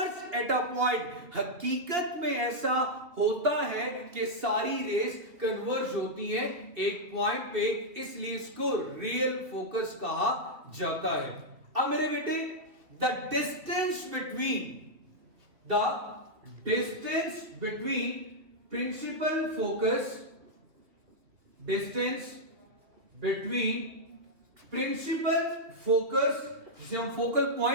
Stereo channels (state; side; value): late; left; 3.0 ms